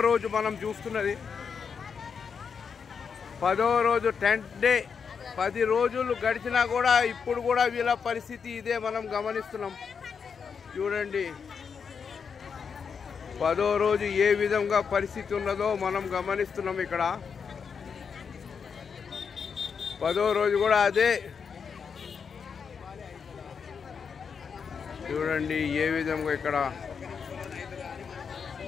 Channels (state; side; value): quieter; right; 6.2 dB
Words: రోజు మనం చూస్తున్నది. 10వ రోజు 10th డే. 10 రోజులు గడిచినా కూడా ఇప్పుడు కూడా వీళ్ళ పరిస్థితి ఇదే మనం గమనిస్తున్నాం. చూడండి 10వ రోజు ఏ విధంగా పరిస్థితి ఉన్నదో మనం గమనిస్తున్నాం. ఇక్కడ 10వ రోజు కూడా అదే. చూడండి ఏ విధంగా ఇక్కడ